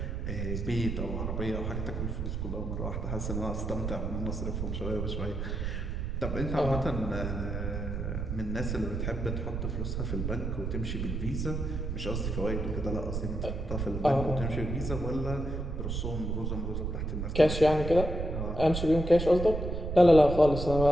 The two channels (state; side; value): noise; right; rumble, 3 dB below the sound